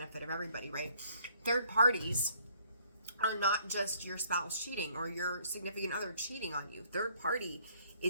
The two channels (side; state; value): both; inverted; correlation -0.63